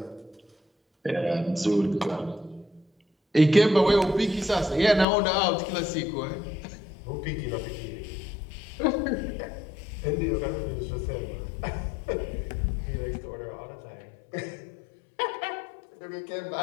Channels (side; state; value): right; drops out; at 5.1 s